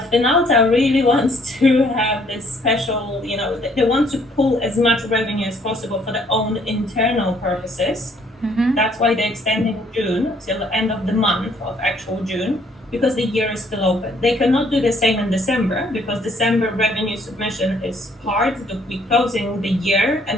Finalta really wants to have this special, they want to pull as much revenue as possible for their own internal purposes. Mm-hmm. That's why they're extending June till the end of the month of actual June, because the year is still open. They cannot do the same in December because December revenue submission is hard. We're closing the year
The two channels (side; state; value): both; normal; correlation 0.64